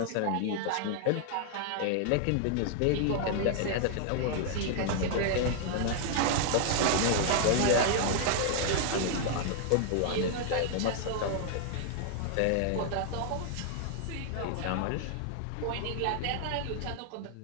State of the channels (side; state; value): both; different; correlation 0.00